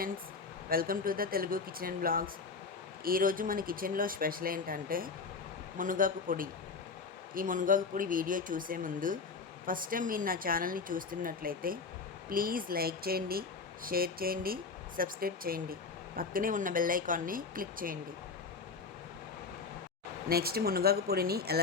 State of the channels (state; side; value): quieter; right; 4.7 dB